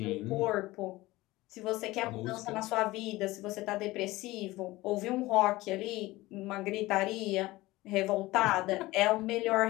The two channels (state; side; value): quieter; right; 19.1 dB